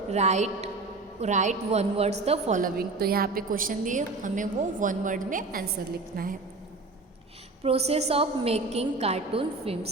right one words the following. तो यहाँ पे क्वेश्चन दिए, हमें वो वन वर्ड में आंसर लिखना है. Process of making cartoon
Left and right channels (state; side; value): quieter; left; 3.5 dB